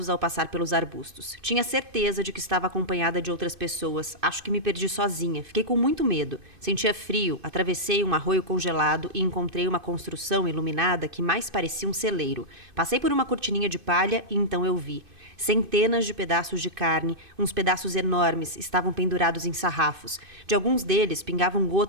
ao passar pelos arbustos. Tinha certeza de que estava acompanhada de outras pessoas. Acho que me perdi sozinha. Fiquei com muito medo. Sentia frio, atravessei um arroio congelado e encontrei uma construção iluminada que mais parecia um celeiro. Passei por uma cortininha de palha e então eu vi. Centenas de pedaços de carne, uns pedaços enormes, estavam pendurados em sarrafos. De alguns deles pingavam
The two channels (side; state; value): left; late; 2.5 ms